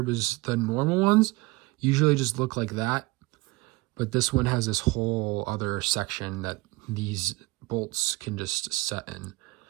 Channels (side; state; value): left; quieter; 22.3 dB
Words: because the normal ones usually just look like that. But this one has this whole other section that these bolts can just set in.